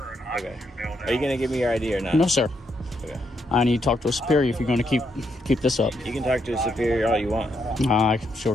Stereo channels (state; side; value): normal; both; correlation 0.78